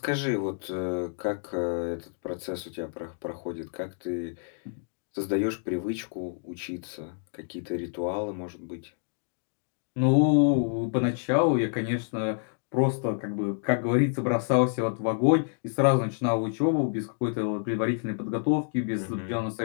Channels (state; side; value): silent; right; digital silence